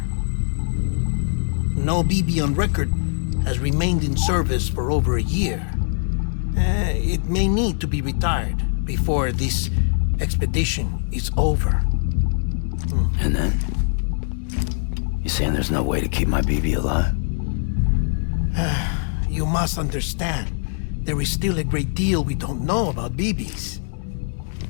No BB on record has remained in service for over a year. It may need to be retired before this expedition is over. And then? You saying there's no way to keep my BB alive? You must understand, there is still a great deal we don't know about BBs.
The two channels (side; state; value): right; silent; digital silence